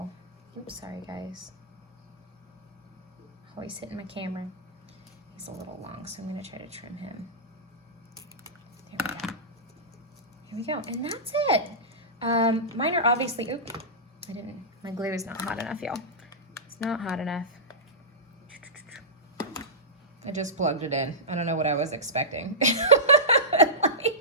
oops, sorry guys. Always hitting my camera. He's a little long, so I'm gonna try to trim him. There we go. Here we go, and that's it. Mine are obviously, oop, my glue is not hot enough, y'all. It's not hot enough. I just plugged it in. I don't know what I was expecting.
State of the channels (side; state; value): both; normal; correlation -0.15